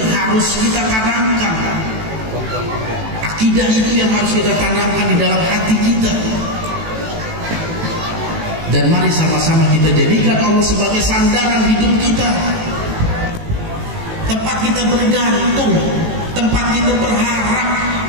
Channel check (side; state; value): left; late; 18 ms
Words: harus kita tanamkan. Akidah itu yang harus kita tanamkan di dalam hati kita. Dan mari sama-sama kita jadikan Allah sebagai sandaran hidup kita, tempat kita bergantung, tempat kita berharap